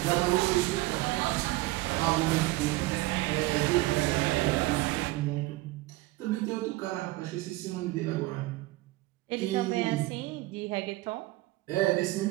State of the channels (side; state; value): left; quieter; 19.3 dB